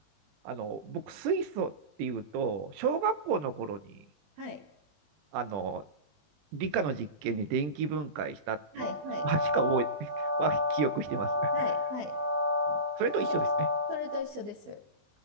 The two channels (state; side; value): late; left; 20 ms